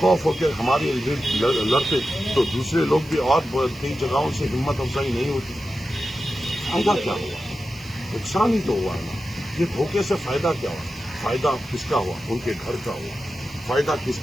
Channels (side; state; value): right; noise; hiss, 23 dB below the sound